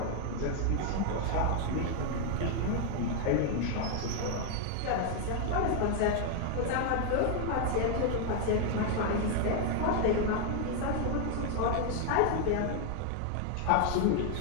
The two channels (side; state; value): both; different; correlation 0.00